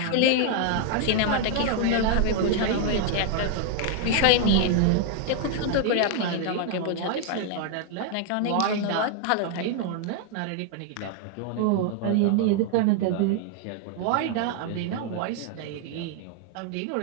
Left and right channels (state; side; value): different; both; correlation 0.00